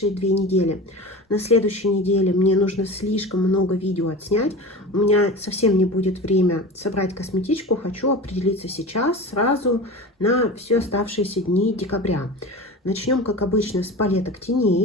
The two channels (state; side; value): normal; both; correlation 0.31